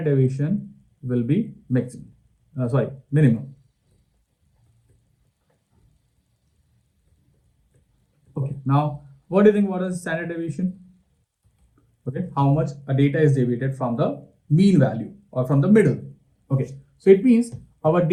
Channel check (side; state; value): both; identical; correlation 1.00